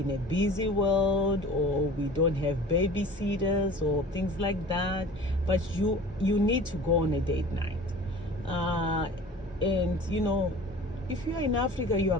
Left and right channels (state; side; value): normal; both; correlation 0.42